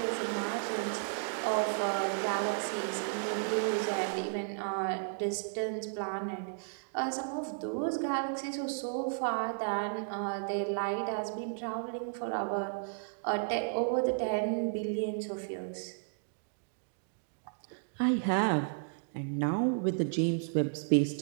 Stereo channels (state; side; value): silent; left; digital silence